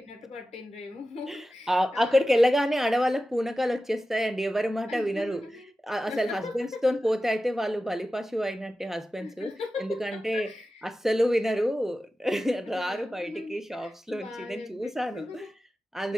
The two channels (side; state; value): both; normal; correlation 0.94